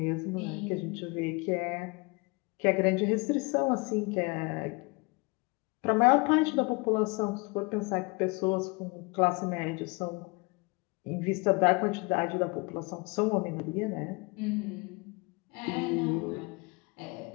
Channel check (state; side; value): quieter; right; 27.9 dB